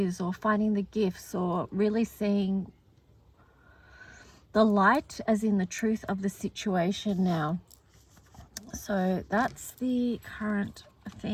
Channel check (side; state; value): both; identical; correlation 1.00